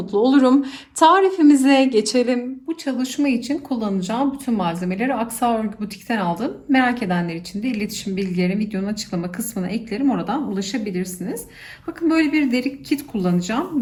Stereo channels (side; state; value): both; identical; correlation 1.00